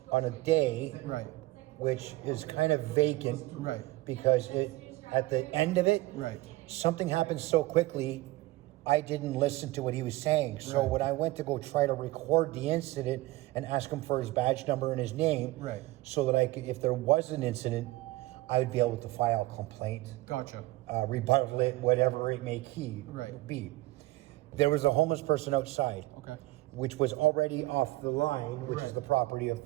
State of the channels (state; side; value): quieter; left; 19.0 dB